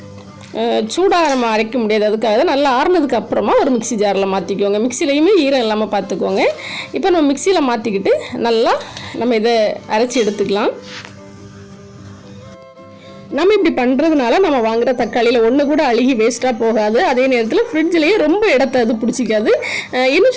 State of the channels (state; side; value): identical; both; correlation 1.00